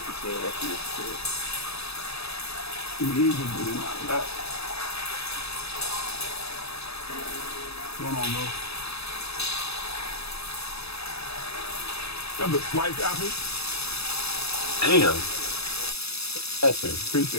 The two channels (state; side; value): late; right; 0.78 ms